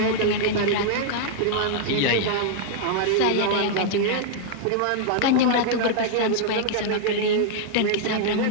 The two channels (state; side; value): different; both; correlation -0.01